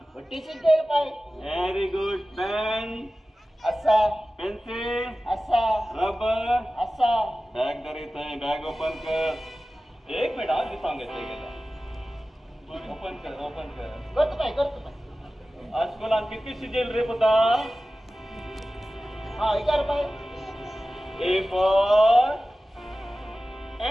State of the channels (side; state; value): both; normal; correlation 0.96